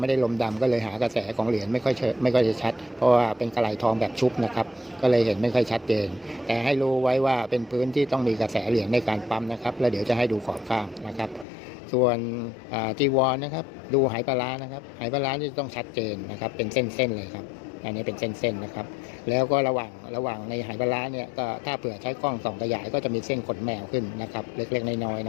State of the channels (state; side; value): drops out; right; at 11.5 s